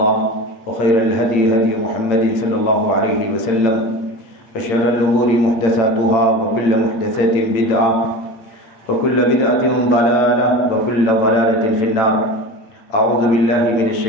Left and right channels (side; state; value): right; late; 8.9 ms